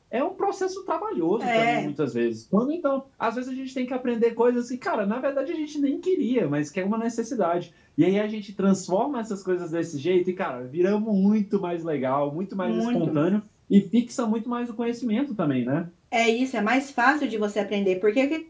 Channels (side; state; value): both; identical; correlation 1.00